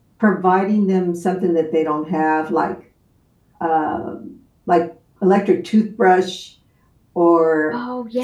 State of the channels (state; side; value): identical; both; correlation 1.00